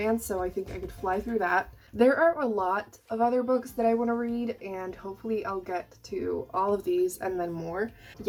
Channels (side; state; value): both; identical; correlation 1.00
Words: so I think I could fly through that. There are a lot of other books that I want to read, and hopefully I'll get to all of these and then more.